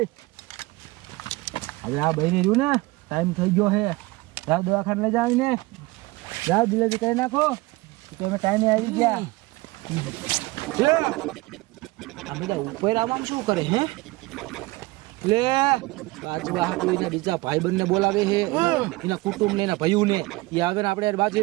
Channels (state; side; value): quieter; left; 22.0 dB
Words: હવે આ બહેને રહ્યું ને ટાઈમ થઈ ગયો છે. રાત દવાખાને લઈ જાવ ને રાત ડિલિવરી કરી નાખો તમે ટાઈમે આવી ગયા. આ બધા ઉપર આવવાનું શું કરે હે? લે બાજવા હાકું બીજા ભાઈબંધને બોલાવે છે એના કુટુંબને એના ભાઈઓને એ આવે ને આપણે બાજુ